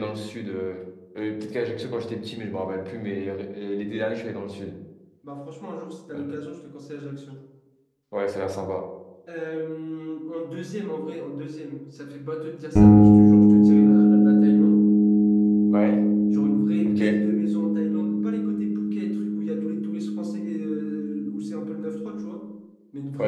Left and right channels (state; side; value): identical; both; correlation 1.00